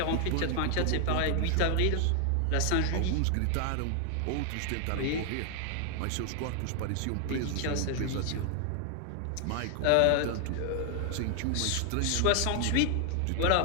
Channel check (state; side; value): different; both; correlation 0.00